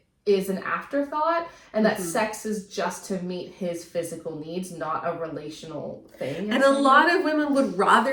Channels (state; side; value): identical; both; correlation 1.00